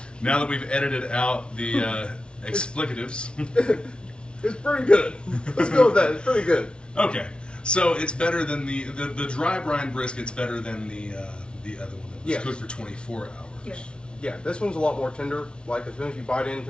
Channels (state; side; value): late; right; 0.057 ms